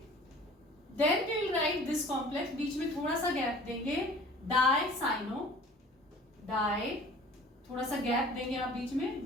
then we will write this complex, बीच में थोड़ा सा गैप देंगे, डाई साइनो डाई, थोड़ा सा गैप देंगे आप बीच में,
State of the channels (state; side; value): normal; both; correlation 0.47